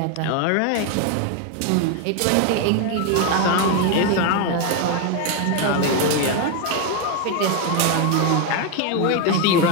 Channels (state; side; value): different; both; correlation 0.01